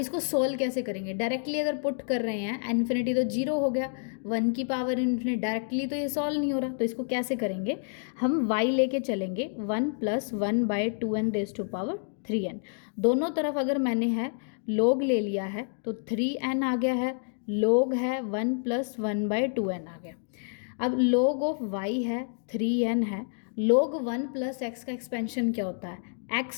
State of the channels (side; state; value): right; silent; 59 dB below the other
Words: सोल्व कैसे करेंगे, डायरेक्टली अगर पुट कर रहे हैं इन्फिनिटी तो 0 हो गया, 1 की पावर इन्फिनिटी डायरेक्टली तो ये सॉल्व नहीं हो रहा, तो इसको कैसे करेंगे, हम y लेके चलेंगे 1 + 1/2n⁻³ दोनों तरफ अगर मैंने है log ले लिया है तो 3n आ गया है, log है 1 + 1/2n आ गया। अब log ऑफ y है 3n है, log 1 + x का एक्सपेंशन क्या होता है x